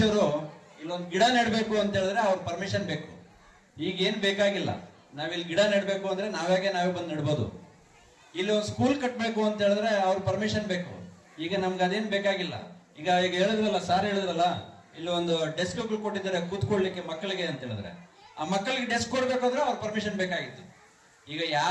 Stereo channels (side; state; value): both; identical; correlation 1.00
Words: ಇಲ್ಲೊಂದು ಗಿಡ ನೆಡಬೇಕು ಅಂತ ಹೇಳಿದ್ರೆ ಅವ್ರ ಪರ್ಮಿಷನ್ ಬೇಕು. ಈಗ ಏನ್ ಬೇಕಾಗಿಲ್ಲ, ನಾವಿಲ್ಲಿ ಗಿಡ ನೆಡಬೇಕು ಅಂದ್ರೆ ನಾವೇ ಬಂದು ನೆಡ್ಬೋದು. ಇಲ್ಲಿ ಒಂದು ಸ್ಕೂಲ್ ಕಟ್ಟಬೇಕು ಅಂತ ಹೇಳಿದ್ರೆ ಅವ್ರ ಪರ್ಮಿಷನ್ ಬೇಕು. ಈಗ ನಮ್ಗೆ ಅದೇನ್ ಬೇಕಾಗಿಲ್ಲ. ಈಗ ಹೇಳಿದ್ರಲ್ಲ, ಸಾರ್ ಹೇಳಿದ್ರಲ್ಲ, ಇಲ್ಲಿ ಒಂದು ಡೆಸ್ಕ್ಗಳು ಕೊಟ್ಟಿದ್ದಾರೆ ಕೂತ್ಕೊಳ್ಳಿಕ್ಕೆ ಮಕ್ಕಳಿಗೆ ಅಂತ ಹೇಳಿದ್ರೆ, ಆ ಮಕ್ಕಳಿಗೆ ಡೆಸ್ಕ್ ಕೊಡ್ಬೇಕಾದ್ರೆ ಅವ್ರ ಪರ್ಮಿಷನ್ ಬೇಕಾಗಿತ್ತು. ಈಗ